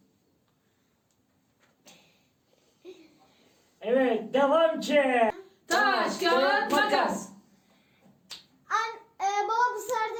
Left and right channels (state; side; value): identical; both; correlation 1.00